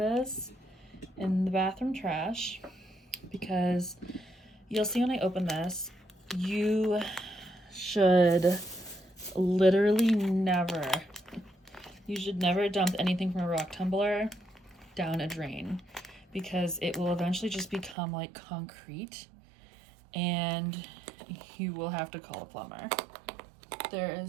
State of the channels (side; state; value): left; drops out; at 17.9 s